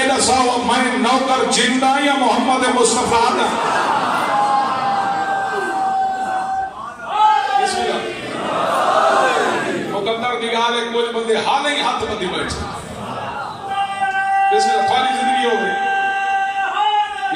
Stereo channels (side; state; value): both; identical; correlation 1.00